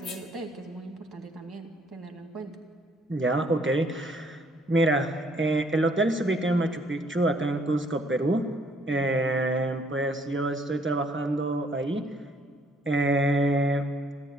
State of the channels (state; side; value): normal; both; correlation 0.64